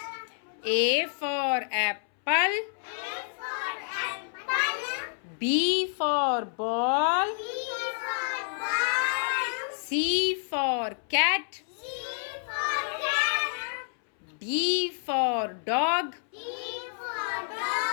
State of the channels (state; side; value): silent; right; 59 dB below the other